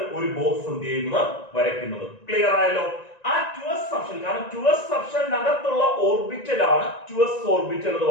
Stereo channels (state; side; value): late; right; 1.9 ms